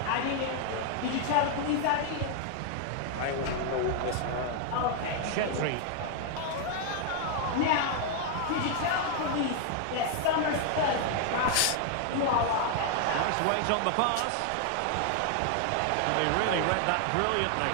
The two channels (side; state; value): both; different; correlation 0.00